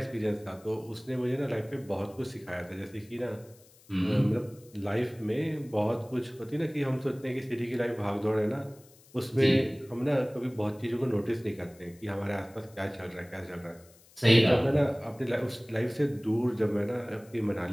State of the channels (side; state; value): left; noise; hiss, 26 dB below the sound